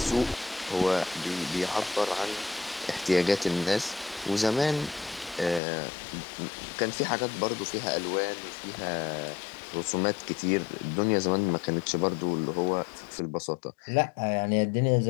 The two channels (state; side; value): drops out; right; at 5.6 s